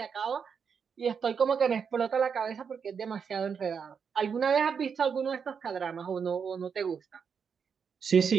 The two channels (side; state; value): left; quieter; 6.5 dB